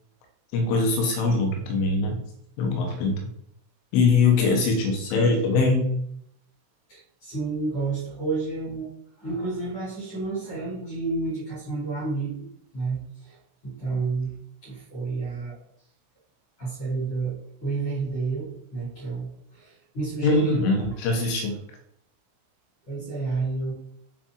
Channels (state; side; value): late; right; 16 ms